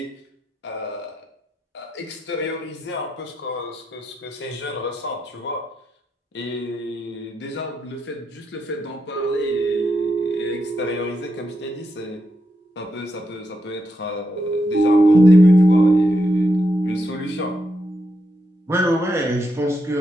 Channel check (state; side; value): normal; both; correlation 0.83